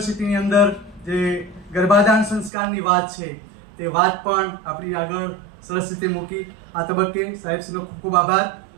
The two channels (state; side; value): drops out; left; at 2.5 s